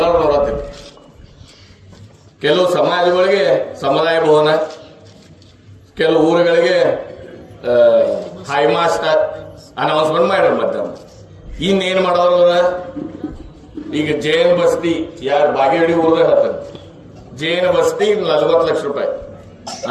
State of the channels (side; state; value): both; identical; correlation 1.00